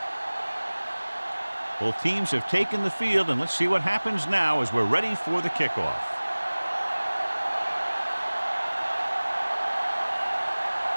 Both teams have taken the field, and let's see what happens now as we're ready for the kickoff.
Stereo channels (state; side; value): inverted; both; correlation -1.00